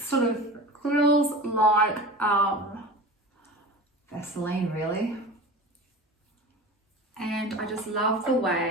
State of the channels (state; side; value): normal; both; correlation 0.33